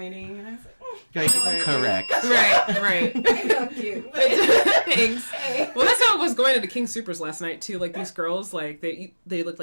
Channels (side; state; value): both; inverted; correlation -1.00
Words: and I was like, Like, correct. Right. "I know, cute." Thanks. Well, that's how it was going to the King Supers last night too. Like these girls, like they look